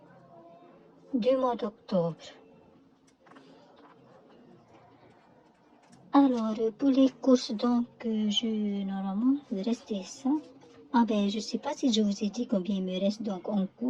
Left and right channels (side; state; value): both; identical; correlation 1.00